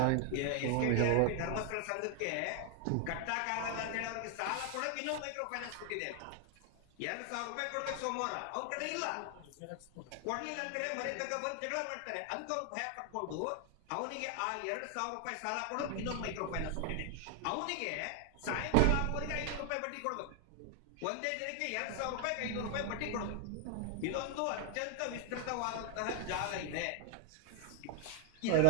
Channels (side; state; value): both; different; correlation 0.00